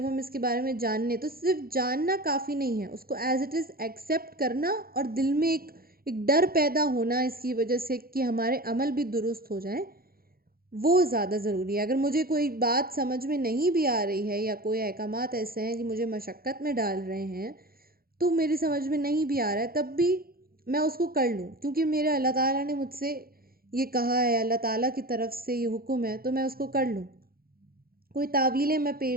ہم اس کے بارے میں جانیں، تو صرف جاننا کافی نہیں ہے، اس کو ایز اٹ از ایکسیپٹ کرنا، اور دل میں ایک ڈر پیدا ہونا اس کی وجہ سے کہ ہمارے عمل بھی درست ہو جائیں، وہ زیادہ ضروری ہے۔ اگر مجھے کوئی بات سمجھ میں نہیں بھی آ رہی ہے، یا کوئی احکامات ایسے ہیں کہ مجھے مشقت میں ڈال رہے ہیں، تو میری سمجھ میں نہیں بھی آ رہا ہے، تب بھی میں اس کو کر لوں، کیونکہ میرے اللہ تعالیٰ نے مجھ سے یہ کہا ہے، اللہ تعالیٰ کی طرف سے یہ حکم ہے، تو میں اس کو کر لوں۔ کوئی تعویلیں میں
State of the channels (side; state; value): left; late; 0.43 ms